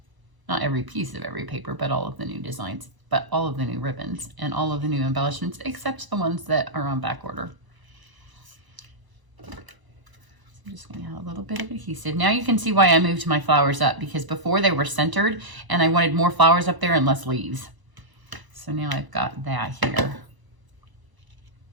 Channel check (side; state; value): left; late; 1.0 ms